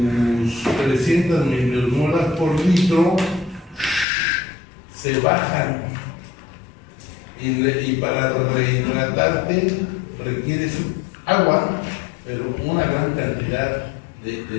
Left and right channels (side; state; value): right; drops out; at 4.0 s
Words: 300 milimolas por litro se bajan. Y para rehidratarte requieres agua, pero una gran cantidad